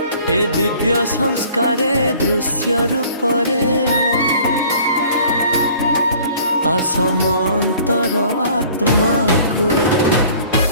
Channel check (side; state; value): both; inverted; correlation -0.52